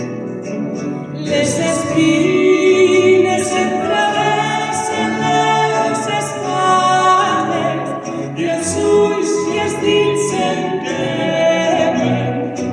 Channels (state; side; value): identical; both; correlation 1.00